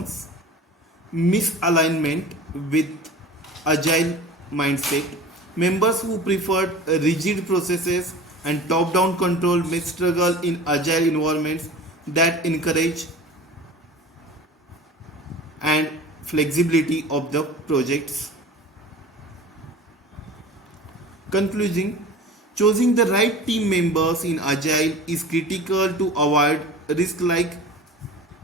Misalignment with agile mindset. Members who prefer rigid processes and top down control may struggle in agile environments that encourage and flexibility of the projects. Concluding, choosing the right team members in Agile is critical to avoid risks like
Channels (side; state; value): both; normal; correlation 0.38